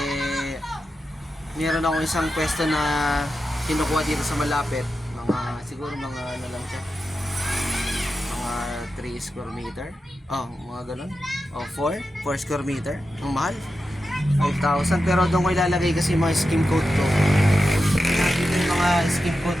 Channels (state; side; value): normal; both; correlation 0.90